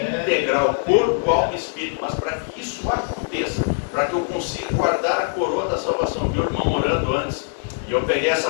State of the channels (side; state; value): right; silent; 64 dB below the other